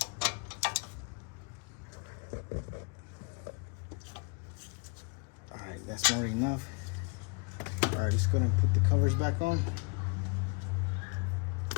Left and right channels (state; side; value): quieter; right; 33.4 dB